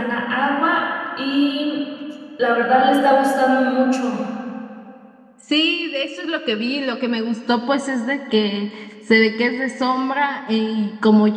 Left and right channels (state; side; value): identical; both; correlation 1.00